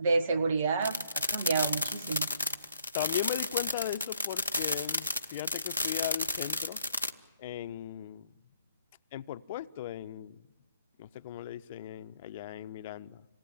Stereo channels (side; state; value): both; inverted; correlation -0.64